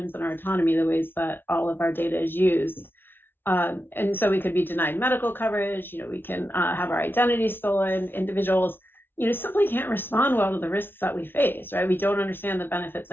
and our autonomy, the ways that all of our data is used. And so we could be denied medical coverage, we can have our identity stolen. Individuals, simply can't respond well to the risks that we face, right? We don't understand the benefits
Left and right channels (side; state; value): right; late; 0.10 ms